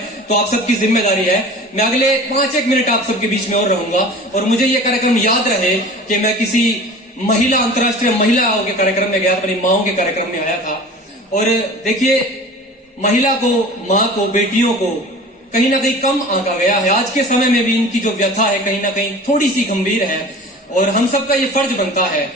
तो आप सबकी जिम्मेदारी है, मैं अगले 5-1 मिनट आप सबके बीच में और रहूंगा और मुझे ये कार्यक्रम याद रहे कि मैं किसी महिला, अंतर्राष्ट्रीय महिलाओं के कार्यक्रम में गया, अपनी माओं के कार्यक्रम में आया था। और देखिए, महिला को, माँ को, बेटियों को कहीं ना कहीं कम आंका गया है। आज के समय में भी इनकी जो व्यथा है कहीं ना कहीं थोड़ी सी गंभीर है और हम सबका ये फर्ज बनता है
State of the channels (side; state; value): both; normal; correlation 0.40